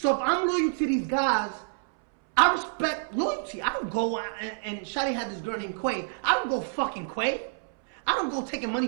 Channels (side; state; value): left; silent; 60 dB below the other